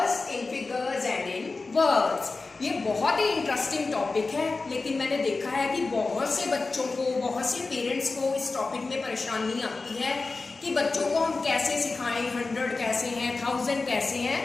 in figures and in words. ये बहुत ही इंटरेस्टिंग टॉपिक है, लेकिन मैंने देखा है कि बहुत से बच्चों को, बहुत से पेरेंट्स को इस टॉपिक में परेशानी आती है कि बच्चों को हम कैसे सिखाएं, 100 कैसे हैं, 1000 कैसे हैं।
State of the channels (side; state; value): right; quieter; 3.8 dB